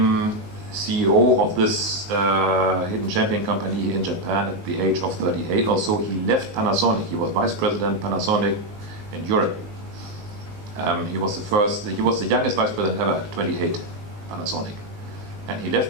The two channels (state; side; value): late; left; 19 ms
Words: CEO of this hidden champion company here in Japan at the age of 38 or so. He left Panasonic. He was vice president Panasonic in Europe. He was the youngest vice president ever, 28, Panasonic. And he